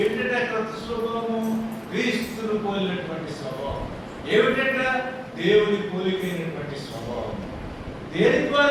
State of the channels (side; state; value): both; identical; correlation 1.00